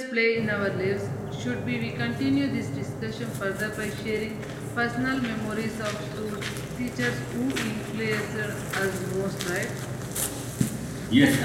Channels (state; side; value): identical; both; correlation 1.00